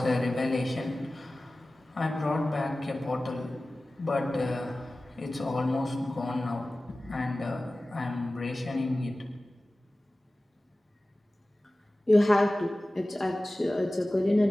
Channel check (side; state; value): both; normal; correlation 0.97